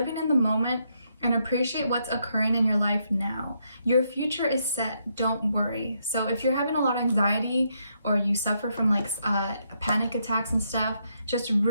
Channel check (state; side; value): inverted; both; correlation -0.77